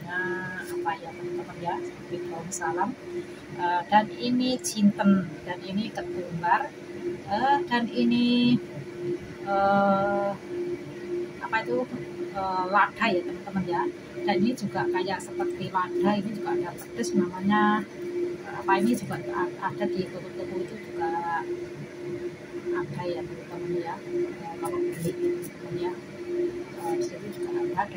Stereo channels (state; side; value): identical; both; correlation 1.00